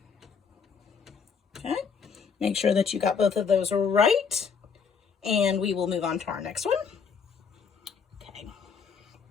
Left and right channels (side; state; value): right; quieter; 6.0 dB